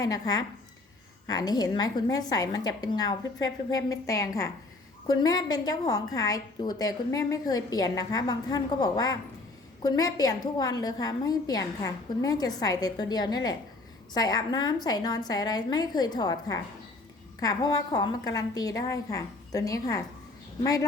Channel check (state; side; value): quieter; right; 3.1 dB